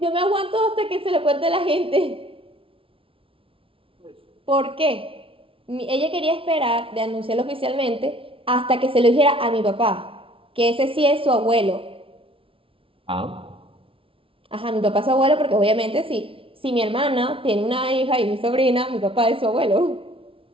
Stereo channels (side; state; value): left; late; 0.26 ms